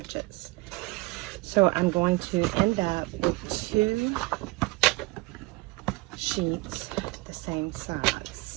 So I'm going to end up with 2 sheets the same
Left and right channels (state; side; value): quieter; left; 24.5 dB